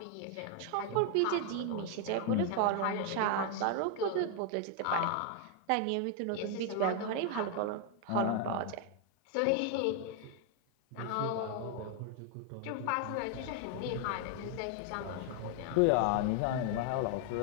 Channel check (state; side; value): different; both; correlation 0.00